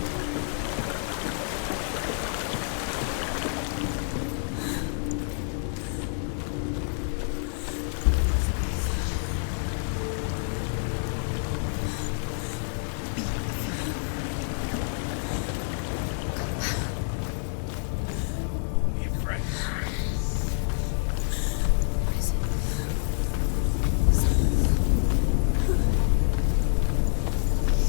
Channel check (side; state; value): right; silent; digital silence